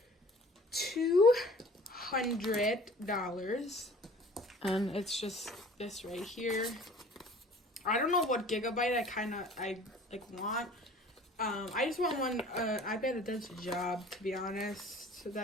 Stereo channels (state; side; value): normal; both; correlation 0.48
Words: $200. And it's just this right here. I don't know what gigabyte I want. I just want one iPad that does the job, to be honest. So